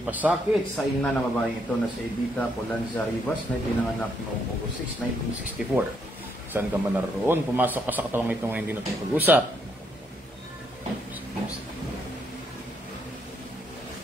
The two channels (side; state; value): both; normal; correlation 0.74